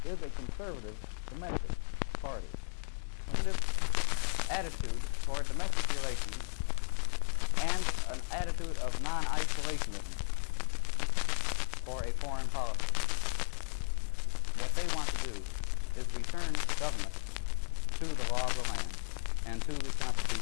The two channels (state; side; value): silent; right; digital silence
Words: is a conservative domestic party. Conservative attitude toward domestic relations and an attitude of non-isolationism for a foreign policy. What they want to do is return government to the law of the land and to the